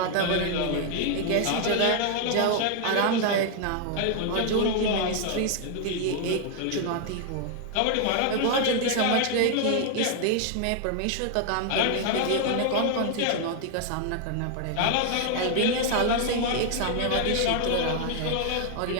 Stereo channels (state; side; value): different; both; correlation 0.00